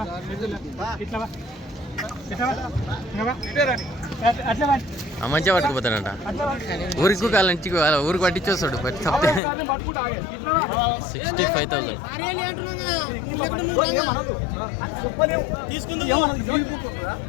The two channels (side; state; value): right; drops out; at 9.4 s